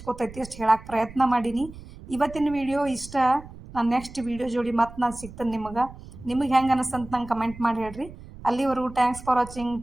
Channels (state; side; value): noise; right; rumble, 16 dB below the sound